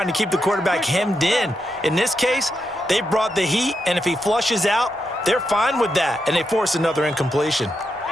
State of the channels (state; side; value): normal; both; correlation 0.84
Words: to keep the quarterback hemmed in. In this case, they brought the heat, and if he flushes out, they're fine with that, and they force another incompletion.